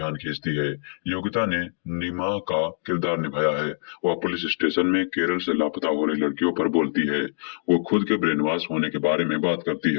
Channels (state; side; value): silent; right; digital silence